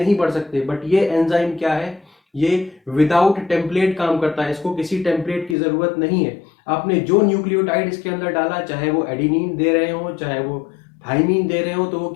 बढ़ सकते। बट ये एंजाइम क्या है? ये विदाउट टेम्पलेट काम करता है, इसको किसी टेम्पलेट की जरूरत नहीं है। आपने जो न्यूक्लियोटाइड इसके अंदर डाला, चाहे वो एडिनिन दे रहे हो चाहे वो थाइमीन दे रहे हो, तो वो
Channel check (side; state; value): right; drops out; at 5.6 s